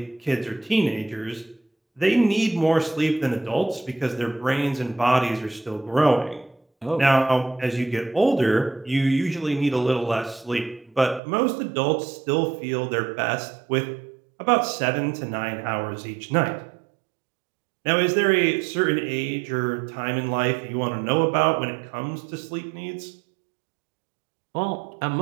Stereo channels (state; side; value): drops out; left; at 11.2 s